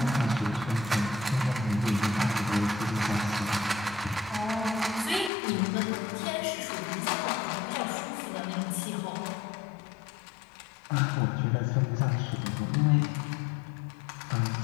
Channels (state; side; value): drops out; right; at 5.3 s